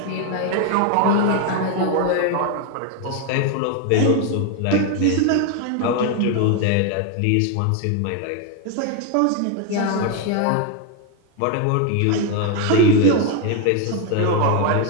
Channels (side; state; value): both; different; correlation 0.01